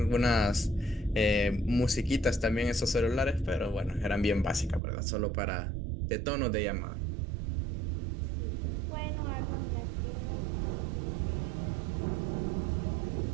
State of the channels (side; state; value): left; drops out; at 4.8 s